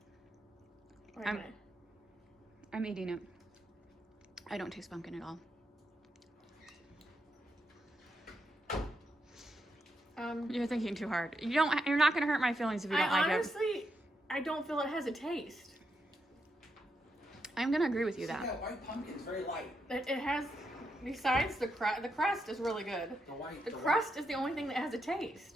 I'm eating it. I don't taste pumpkin at all. You're thinking too hard. You're not gonna hurt my feelings if you don't like honestly, I don't feel it has a taste. I'm gonna agree with you See, that. that white pumpkin is very light. It has, besides the crust is really good. The white. The crust is the only thing that has a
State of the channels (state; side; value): normal; both; correlation 0.82